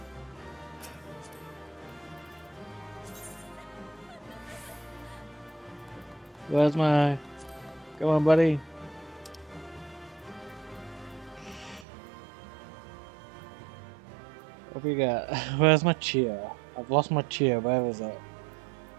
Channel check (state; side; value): drops out; left; at 11.9 s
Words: Where's my... Come on, buddy. What we got? Where's my cheer? I've lost my cheer. Where is it?